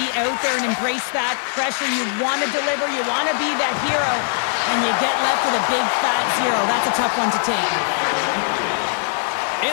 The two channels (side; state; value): right; silent; digital silence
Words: out there and embrace that pressure. You want to deliver. You want to be that hero. And you get left with a big, fat zero. That's a tough one to take.